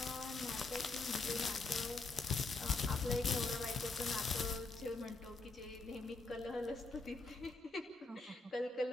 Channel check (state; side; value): quieter; right; 3.6 dB